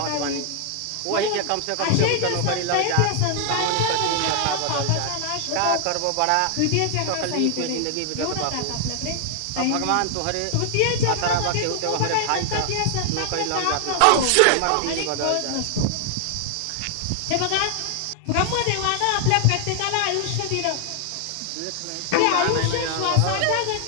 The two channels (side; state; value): both; different; correlation 0.00